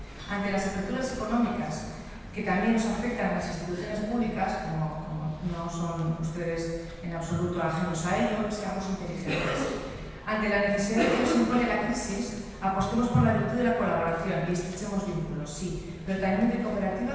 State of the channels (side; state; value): both; identical; correlation 1.00